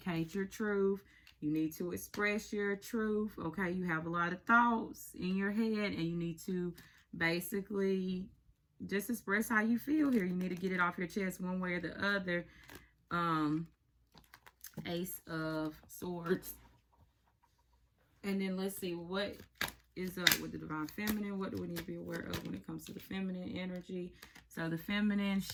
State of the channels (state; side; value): identical; both; correlation 1.00